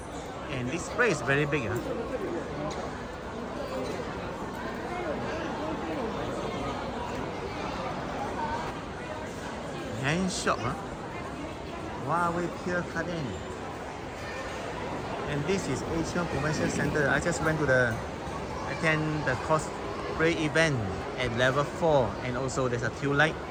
And this place is very big. Hand shop. Huawei Pier Garden. And this is Asian Convention Center. I just went to attend the cosplay event at level 4, and also there's a queue light.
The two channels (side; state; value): both; identical; correlation 1.00